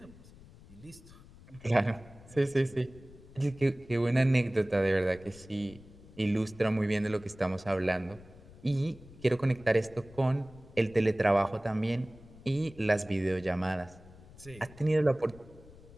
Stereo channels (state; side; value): noise; left; rumble, 21 dB below the sound